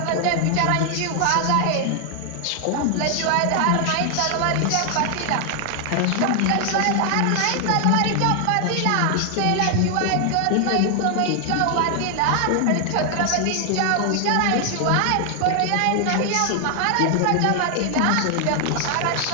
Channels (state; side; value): different; both; correlation 0.00